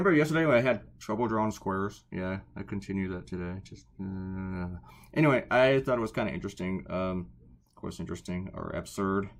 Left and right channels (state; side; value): identical; both; correlation 1.00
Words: yesterday when I had trouble drawing squares? Yeah, I continue that today. Anyway, I thought it was kind of interesting. Of course, interesting or absurd.